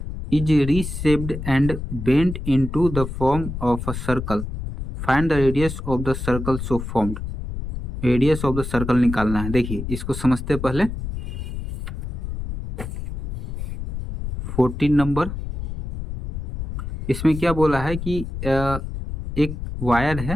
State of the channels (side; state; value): left; noise; rumble, 6 dB below the sound